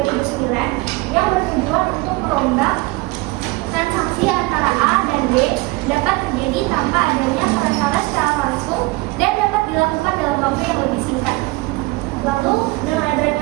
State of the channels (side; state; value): left; quieter; 23.1 dB